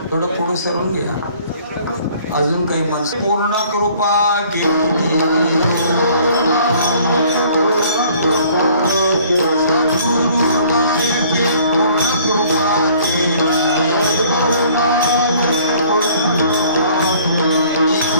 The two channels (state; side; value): inverted; both; correlation -0.56